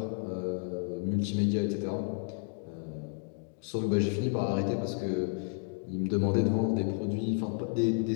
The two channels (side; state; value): right; silent; 57 dB below the other